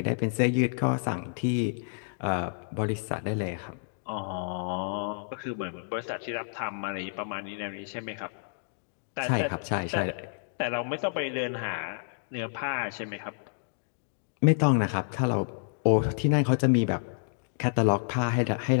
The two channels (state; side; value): silent; right; digital silence